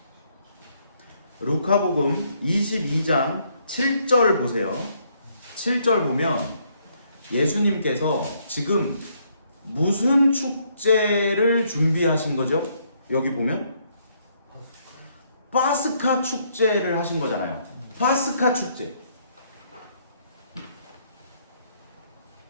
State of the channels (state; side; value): inverted; both; correlation -0.70